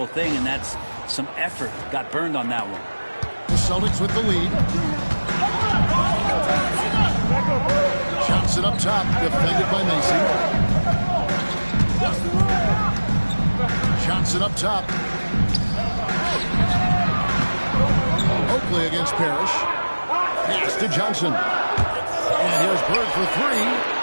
thing, and that's some effort. Got burned on that one. The Celtics with the lead. Johnson up top, defended by Macy. Johnson up top. Oakley against Parrish. Pass to Johnson. And here's Bird for three.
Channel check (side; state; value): both; inverted; correlation -1.00